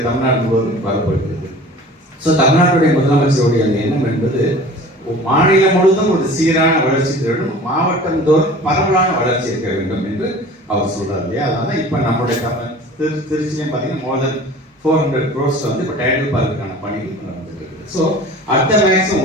தமிழ்நாடு முழுவதும் வரப்படுகிறது. ஸோ தமிழ்நாட்டுடைய முதலமைச்சருடைய அந்த எண்ணம் என்பது மாநிலம் முழுவதும் ஒரு சீரான வளர்ச்சி வேண்டும், மாவட்டம் தோறும் பரவலான வளர்ச்சி இருக்க வேண்டும் என்று அவர் சொல்றாரு இல்லையா. அதனால இப்போ நம்முடைய திருச்சியிலையும் பார்த்தீங்கன்னா more than 400 crores இப்போ டைடல் பார்க்குக்கான பணிகள் நடந்துட்டு இருக்குது. ஸோ அடுத்த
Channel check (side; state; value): both; normal; correlation 0.42